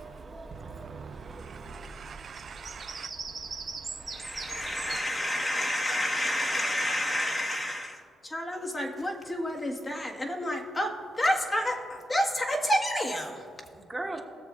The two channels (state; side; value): normal; both; correlation 0.88